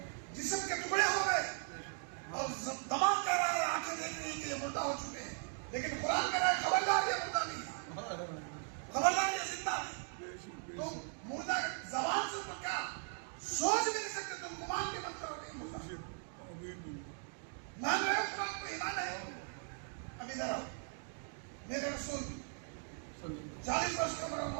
جسم کے ٹکڑے ہو گئے, اور دماغ کہہ رہا ہے, آنکھیں دیکھ رہی ہیں کہ یہ مردہ ہو چکے ہیں. لیکن قرآن کہہ رہا ہے خبردار یہ مردہ نہیں, خبردار یہ زندہ نہیں. تم مردہ زبان سے تو کیا سوچ بھی نہیں سکتے, تم گمان بھی مت کرو گے مردہ. مان رہے ہو قرآن کو, ایمان ہے. اب ادھر آؤ. میرے رسول 40 برس کا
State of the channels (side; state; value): left; silent; 52 dB below the other